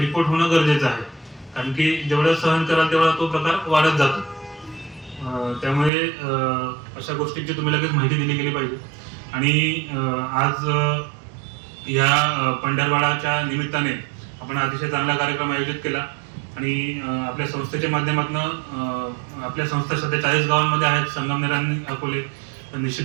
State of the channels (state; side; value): drops out; left; at 5.9 s